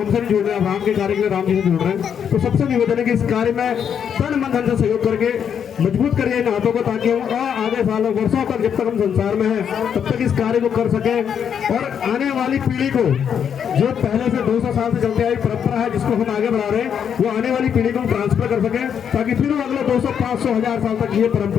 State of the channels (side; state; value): right; quieter; 8.0 dB